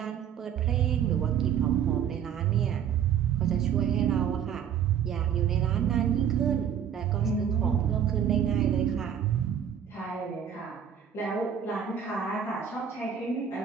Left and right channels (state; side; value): quieter; left; 8.6 dB